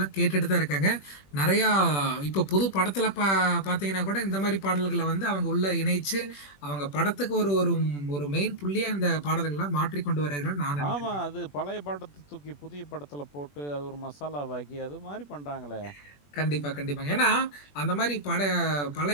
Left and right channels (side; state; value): right; late; 21 ms